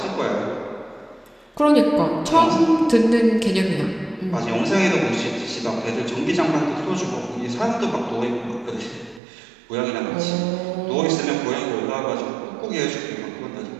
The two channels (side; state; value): left; drops out; at 9.2 s